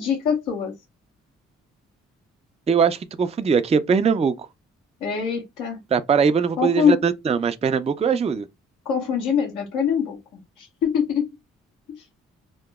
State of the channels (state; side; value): normal; both; correlation 0.52